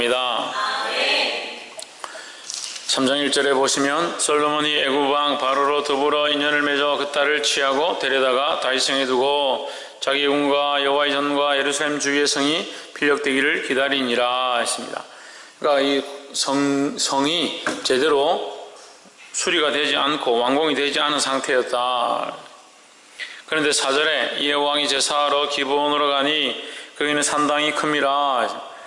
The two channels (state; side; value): identical; both; correlation 1.00